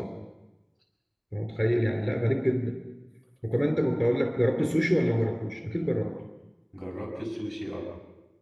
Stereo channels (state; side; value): identical; both; correlation 1.00